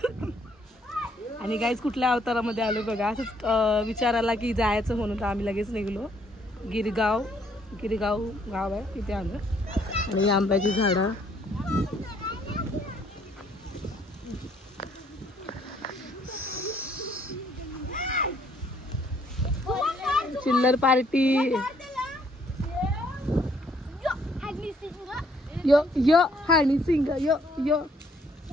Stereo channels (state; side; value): normal; both; correlation 0.66